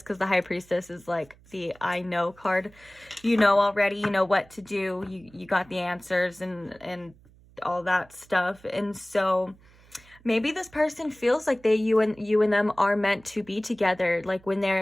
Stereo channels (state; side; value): noise; right; hum, 27 dB below the sound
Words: because the High Priestess is like the I know card. You know already, you know what to do. You got the answers and all that stuff. And so maybe this person feels like you and them are meant to be together. Like when